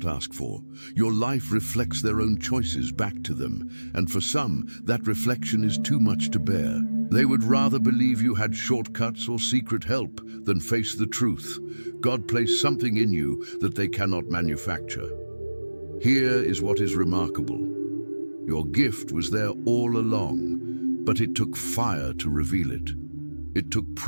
ask for. Your life reflects their own choices back to them, and for some, that reflection is too much to bear. They would rather believe you had shortcuts or secret help than face the truth. God placed something in you that they cannot manufacture. Here is what is remarkable. Your gift was there all along, but it took fire to reveal it. It took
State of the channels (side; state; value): both; inverted; correlation -1.00